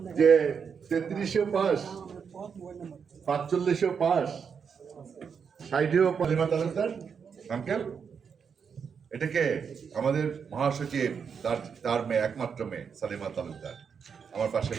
যে 3300 পাস, 4500 পাস, 60ও সালিমা তালুকদার আঙ্কেল, এটাকে আমাদের মহাসচিব, তার মেয়ে, একমাত্র মেয়ে সালিমা তালুকদার আমার পাশে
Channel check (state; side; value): quieter; left; 6.5 dB